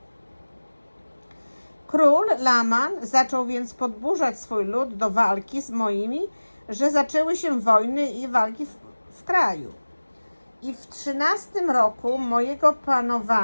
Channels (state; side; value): inverted; both; correlation -1.00